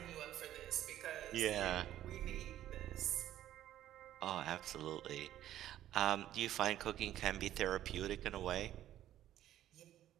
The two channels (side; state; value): left; quieter; 12.5 dB